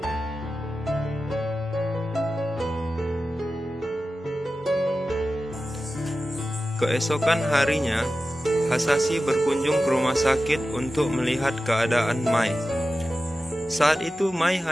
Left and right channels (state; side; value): normal; both; correlation 0.93